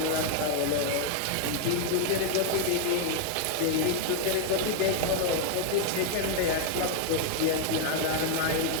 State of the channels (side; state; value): both; different; correlation 0.00